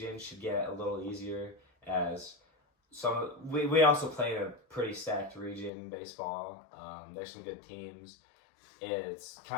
should get a little easier, as we also play in a pretty stacked region in baseball. There's some good teams. It's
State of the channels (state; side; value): drops out; right; at 5.7 s